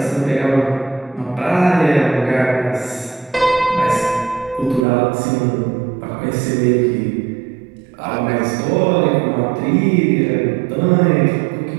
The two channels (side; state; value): left; drops out; at 4.9 s